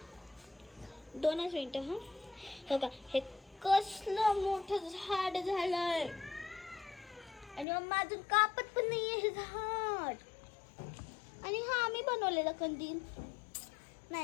2 मिनिटं हा. बघा हे कसलं मोठं झाड झालंय आणि मम्मा अजून कापत पण नाहीये हे झाड. आणि हा आम्ही बनवलेला कंदील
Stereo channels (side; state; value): right; drops out; at 7.7 s